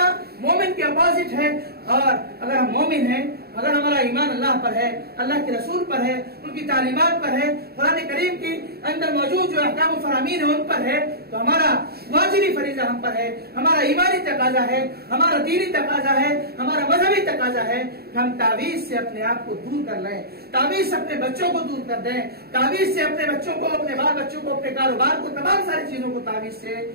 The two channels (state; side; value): late; left; 0.46 ms